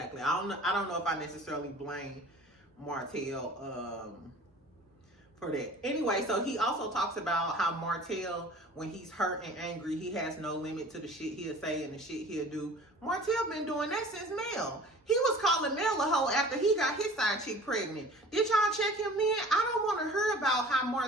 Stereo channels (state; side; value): normal; both; correlation 0.45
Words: I don't know if I necessarily blame Martell for that. Anyway, so he also talks about how Martell, when he's hurt and angry, he has no limit to the shit he'll say and the shit he'll do. Martell been doing that since Mel. He was calling Mel a hoe after he got his side chick pregnant. Did y'all check him in? I don't want to hear about how